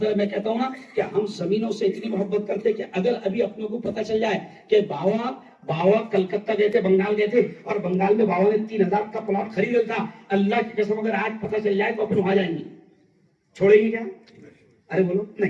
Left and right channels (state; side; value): identical; both; correlation 1.00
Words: है, मैं कहता हूं ना कि हम जमीनों से इतनी मोहब्बत करते कि अगर अभी अपनों को पता चल जाए कि बाबा कलकत्ता गए थे, बंगाल गए थे, और बंगाल में बाबा ने 3000 का प्लॉट खरीदा था, अल्लाह की कसम अगर आज पता चल जाए तो अपन वहां जाएंगे, छोड़ेंगे क्या? अरे बोलो